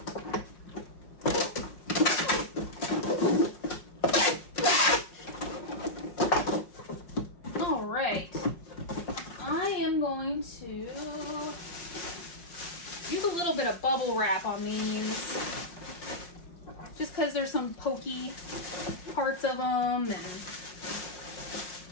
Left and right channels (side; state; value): right; late; 5.6 ms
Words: All right. I am going to use a little bit of bubble wrap on these, just because there's some pokey parts of them.